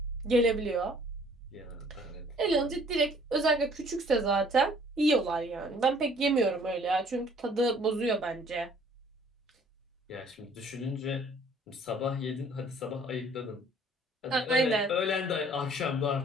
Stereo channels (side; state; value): both; normal; correlation 0.57